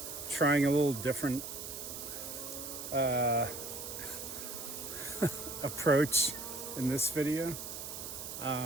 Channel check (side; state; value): right; noise; hiss, 8 dB below the sound